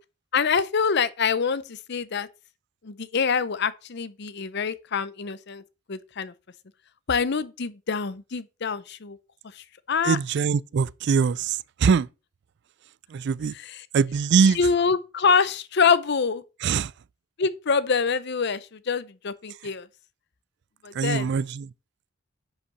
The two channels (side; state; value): both; normal; correlation 0.06